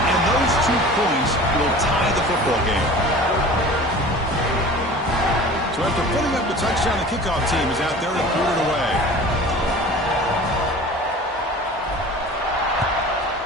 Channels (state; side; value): normal; both; correlation 0.41